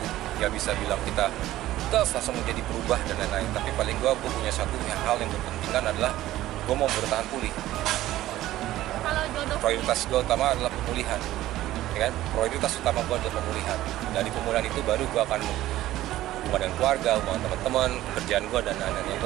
nggak bisa bilang kita langsung menjadi berubah dan lain-lain. Tapi paling gua punya satu hal yang berpentingan adalah gua mau bertahan pulih. Prioritas gua utama adalah pemulihan, ya kan? Prioritas utama gua adalah pemulihan. Dari pemulihan itu baru gua akan hubungan dengan keluarga, hubungan teman-teman, kerjaan gue dan lain-lain. Yang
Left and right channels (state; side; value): quieter; left; 14.9 dB